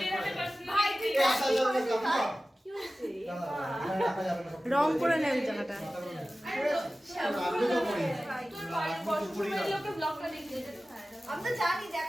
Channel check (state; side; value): normal; both; correlation 0.96